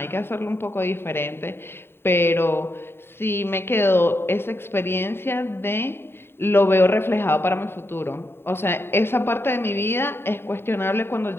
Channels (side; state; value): right; late; 0.11 ms